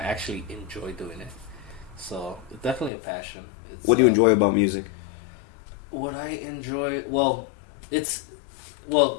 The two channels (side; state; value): right; drops out; at 2.9 s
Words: actually enjoy doing it. So, it's definitely a passion. What do you enjoy about music? What I enjoy...